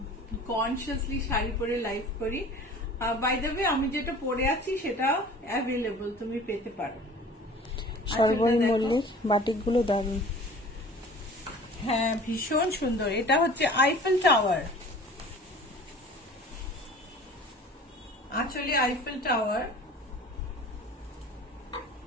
কনসিয়াসলি শাড়ি পরে লাইভ করি। বাই দ্য ওয়ে, আমি যেটা পরে আছি সেটা অ্যাভেলেবল, তুমি পেতে পারো। সর্বরী মল্লিক, বাটিকগুলো দারুণ। হ্যাঁ ভীষণ সুন্দর। এটা হচ্ছে আইফেল টাওয়ার, আঁচলে আইফেল টাওয়ার।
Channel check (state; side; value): normal; both; correlation 0.44